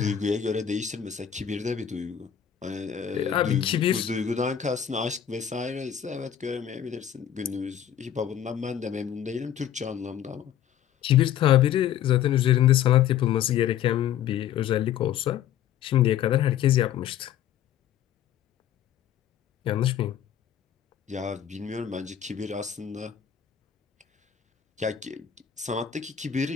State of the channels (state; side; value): quieter; right; 9.9 dB